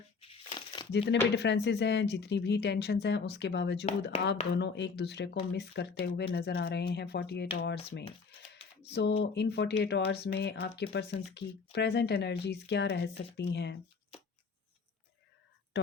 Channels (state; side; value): quieter; right; 4.9 dB